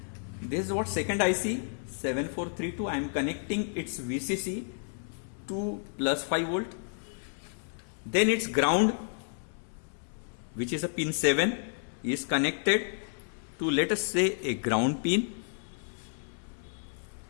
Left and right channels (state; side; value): silent; right; 57 dB below the other